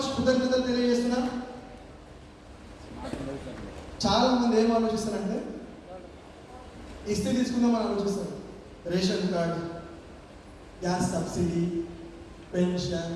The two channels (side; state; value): both; identical; correlation 1.00